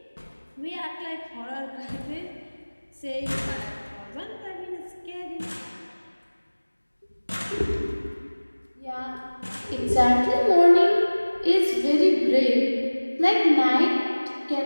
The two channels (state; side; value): inverted; both; correlation -1.00